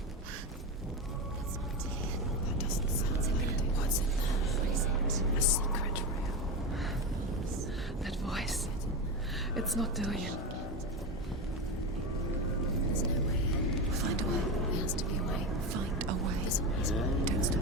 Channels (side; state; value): both; normal; correlation 0.18